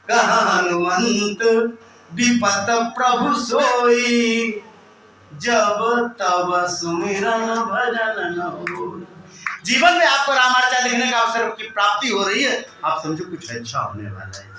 कहा हनुमंत विपत प्रभु सोई, जब तब सुमिरन भजन न होई। जीवन में आपको रामार्चा देखने का अवसर की प्राप्ति हो रही है, आप समझो कुछ अच्छा होने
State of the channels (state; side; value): identical; both; correlation 1.00